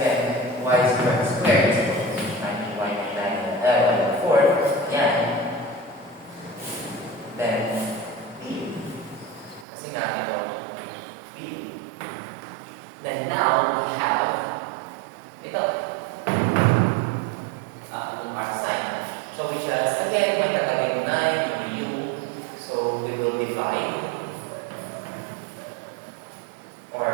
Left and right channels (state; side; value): drops out; left; at 9.7 s